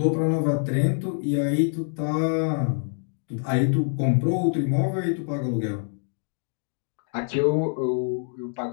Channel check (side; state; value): right; silent; digital silence